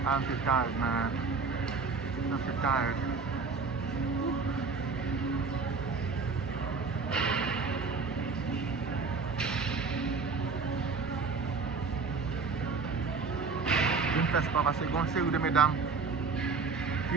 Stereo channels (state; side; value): quieter; left; 4.7 dB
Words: I'm too tired, man. I'm too tired. Je ne fais pas parce que une série de mesdames